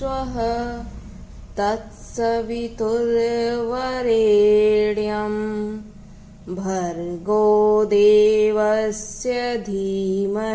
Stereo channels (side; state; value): both; identical; correlation 1.00